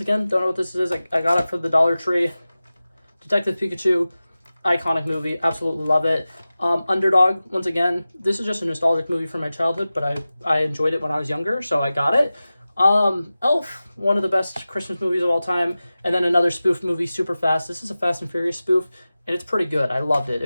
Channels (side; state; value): both; inverted; correlation -0.96